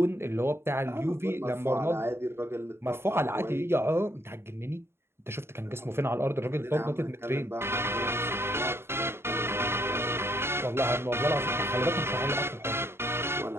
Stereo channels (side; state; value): left; late; 0.12 ms